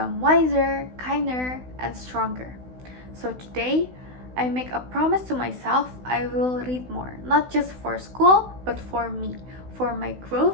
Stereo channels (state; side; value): late; left; 16 ms